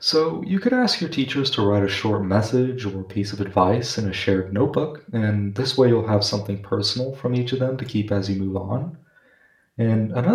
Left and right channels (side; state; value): both; identical; correlation 1.00